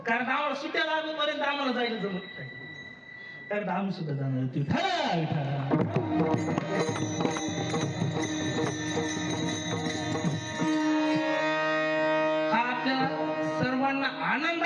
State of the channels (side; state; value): both; identical; correlation 1.00